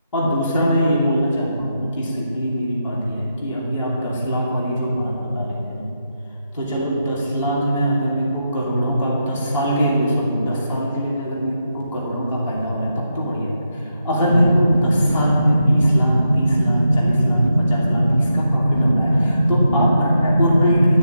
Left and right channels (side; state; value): both; inverted; correlation -0.84